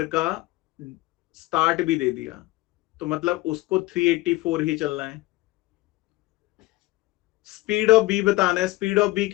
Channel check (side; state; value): right; quieter; 19.6 dB